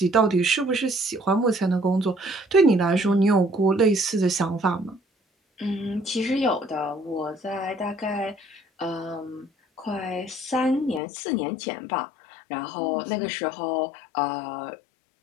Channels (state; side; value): drops out; right; at 11.0 s